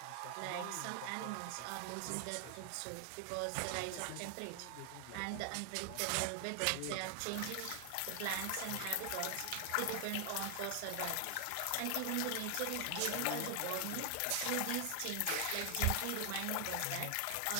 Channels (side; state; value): both; different; correlation 0.00